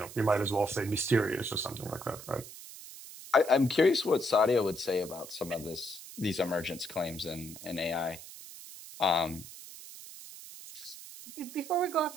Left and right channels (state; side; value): noise; right; hiss, 14 dB below the sound